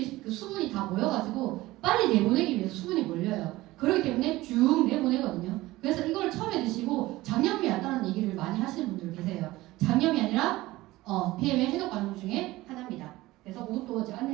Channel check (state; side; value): quieter; left; 18.3 dB